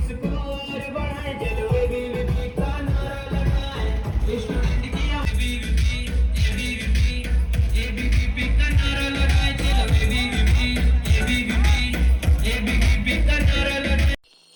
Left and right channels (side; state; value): both; identical; correlation 1.00